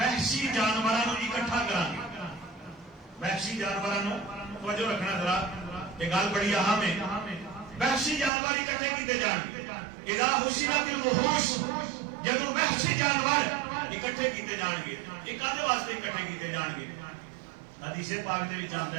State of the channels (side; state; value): left; drops out; at 8.3 s